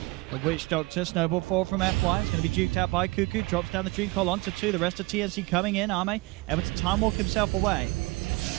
the Witch Doctor. Snowball 4 from FY. It's going to be juked out by Cuckoo. Drops down the Dream Call onto 2. The rest of TNC coming in. Arme able to time walk himself away.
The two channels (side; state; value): left; quieter; 23.7 dB